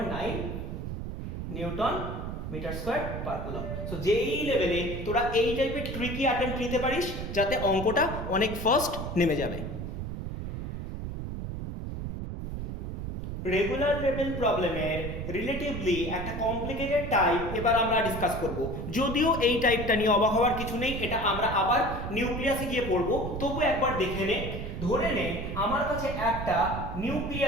newton metre square per coulomb. So যেই লেভেলে তোরা এই টাইপের ট্রিকি অ্যাটেম্প্ট নিতে পারিস যাতে অঙ্কটা অনেক ফাস্ট নেমে যাবে। রেগুলার লেভেল প্রবলেমের রিলেটিভলি একটা কমপ্লিকেটেড টাইপ এবার আমরা ডিসকাস করব। যদিও এই টাইপটা নিয়ে অবাক হওয়ার কিছু নেই, এটা আমরা আবার নিউক্লিয়াসে গিয়ে পড়ব, তবু একবার দেখে নে। ধরে নে আমার কাছে একটা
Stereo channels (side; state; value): right; noise; rumble, 6 dB below the sound